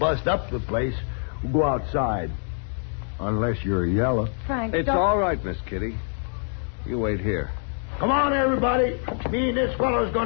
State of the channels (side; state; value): right; silent; 57 dB below the other